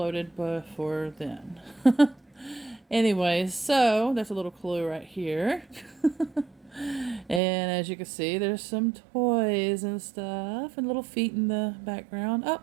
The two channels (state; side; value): drops out; left; at 7.4 s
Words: before then. Anyways, so that's a little clue right here. And as you can see, there's some toys and stuff and little feet in the background. Oh,